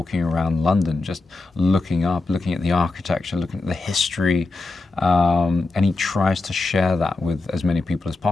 around London, just looking up, looking at the architecture, looking at the history, and he tries to share that with as many people as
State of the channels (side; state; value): right; quieter; 3.4 dB